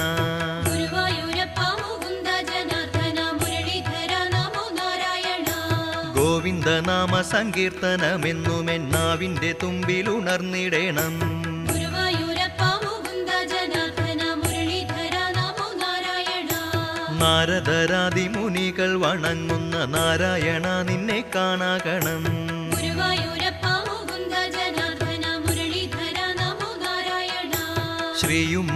ഗുരുവായൂരപ്പ മുകുന്ദ ജനാർദ്ദന മുരളീധര നമോ നാരായണ. ഗോവിന്ദനാമ സങ്കീർത്തനമെന്നുമെന്നാവിന്റെ തുമ്പിലുണർന്നിടേണം. ഗുരുവായൂരപ്പ മുകുന്ദ ജനാർദ്ദന മുരളീധര നമോ നാരായണ. നാരദരാദി മുനികൾ വണങ്ങുന്ന നാരായണ നിന്നെ കാണാകണം. ഗുരുവായൂരപ്പ മുകുന്ദ ജനാർദ്ദന മുരളീധര നമോ നാരായണ.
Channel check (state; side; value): identical; both; correlation 1.00